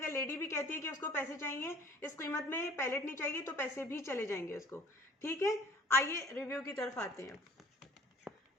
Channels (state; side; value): normal; both; correlation 0.51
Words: लेडी भी कहती है कि उसको पैसे चाहिए, इस कीमत में पैलेट नहीं चाहिए, तो पैसे भी चले जाएंगे उसको, ठीक है। आइए रिव्यू की तरफ आते हैं।